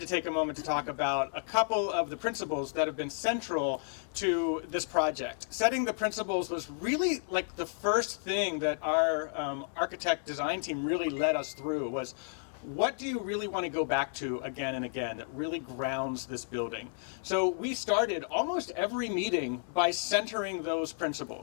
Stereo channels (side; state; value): right; silent; digital silence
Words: take a moment to talk about a couple of the principles that have been central to this project. Setting the principles was really like the first thing that our architect design team really led us through was, what do you really want to go back to again and again that really grounds this building? So we started almost every meeting by centering those